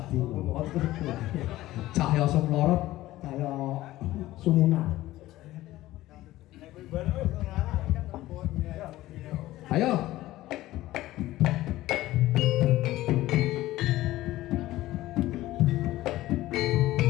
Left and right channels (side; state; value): right; quieter; 16.1 dB